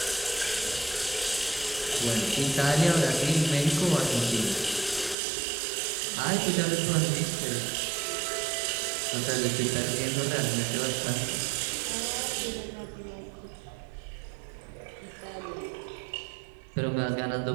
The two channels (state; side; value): drops out; left; at 5.2 s